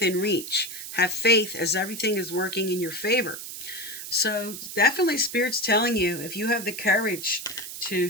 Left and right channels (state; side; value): noise; right; hiss, 9 dB below the sound